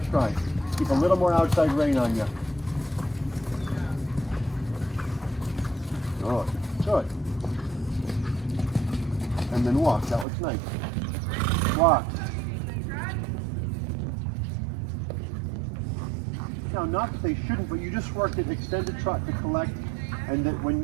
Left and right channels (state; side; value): drops out; left; at 10.2 s